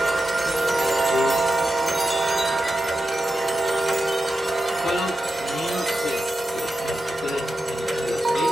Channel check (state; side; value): normal; both; correlation 0.90